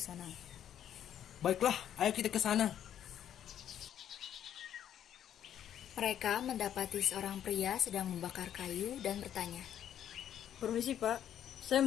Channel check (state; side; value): quieter; right; 10.2 dB